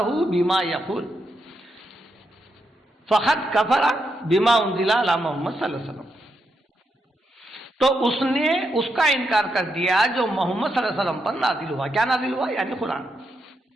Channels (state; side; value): normal; both; correlation 0.82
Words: بما یقول فقد کفر بما انزل علی محمد صلی اللہ علیہ وسلم, تو اس نے اس کا انکار کر دیا جو محمد صلی اللہ علیہ وسلم پر نازل ہوا. کیا نازل ہوا؟ یعنی قرآن.